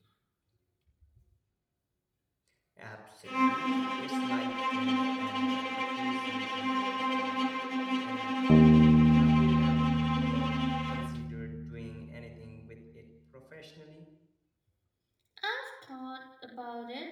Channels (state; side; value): identical; both; correlation 1.00